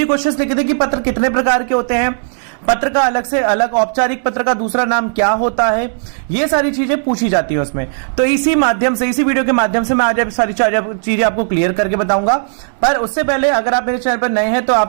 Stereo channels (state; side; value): silent; left; digital silence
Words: क्वेश्चंस लिखे थे कि पत्र कितने प्रकार के होते हैं, पत्र का अलग से अलग, औपचारिक पत्र का दूसरा नाम क्या होता है, ये सारी चीजें पूछी जाती है उसमें। तो इसी माध्यम से, इसी वीडियो के माध्यम से मैं आज सारी चीजें आपको क्लियर करके बताऊंगा। पर उससे पहले अगर आप मेरे चैनल पर नए हैं तो